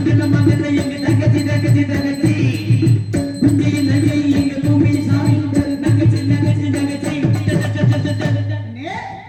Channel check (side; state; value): both; identical; correlation 1.00